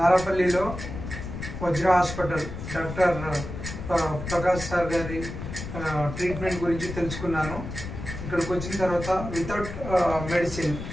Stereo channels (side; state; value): left; noise; rumble, 8 dB below the sound